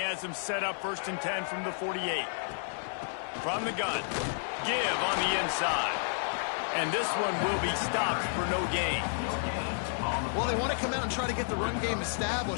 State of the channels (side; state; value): right; silent; digital silence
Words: them set up 1st and 10 from the 48. From the gun, give on the inside. And this one will be stopped for no gain. Well, they want to come out and try to get the run game